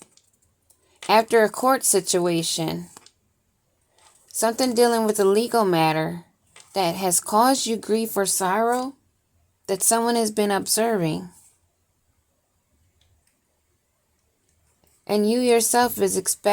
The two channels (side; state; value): both; identical; correlation 1.00